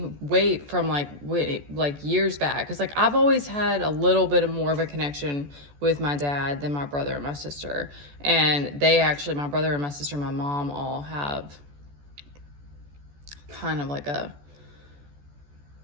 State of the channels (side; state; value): left; late; 14 ms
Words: wait, from like years back, because like I've always had a little bit of more of a connection with my dad than my brother and my sister, and they actually, my brother and my sister and my mom all have kind of like a